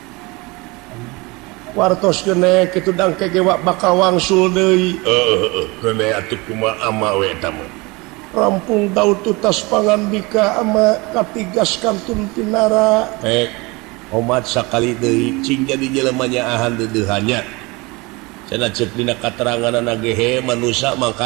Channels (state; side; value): quieter; left; 25.1 dB